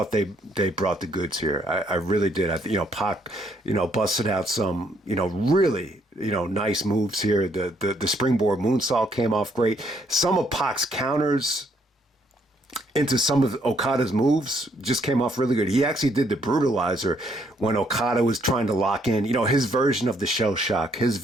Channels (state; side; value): normal; both; correlation 0.70